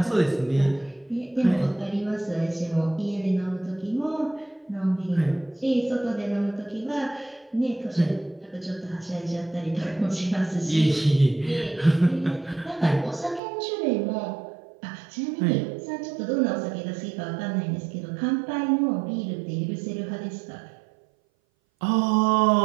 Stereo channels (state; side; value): drops out; left; at 13.4 s